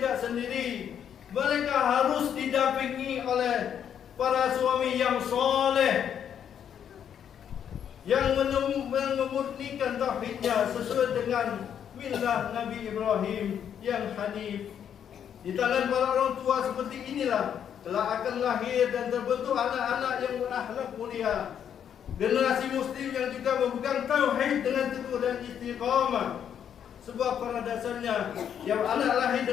sendiri. Mereka harus didampingi oleh para suami yang soleh, yang memurnikan tauhidnya sesuai dengan millah Nabi Ibrahim yang hanif. Di tangan para orang tua seperti inilah telah akan lahir dan terbentuk anak-anak yang berakhlak mulia, generasi muslim yang juga memegang tauhid dengan teguh dan istiqamah. Sebab pada dasarnya yang anak lahir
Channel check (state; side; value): quieter; right; 8.8 dB